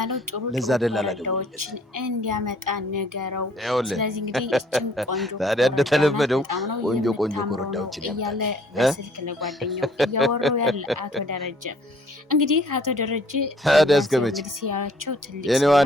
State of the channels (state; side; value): normal; both; correlation 0.59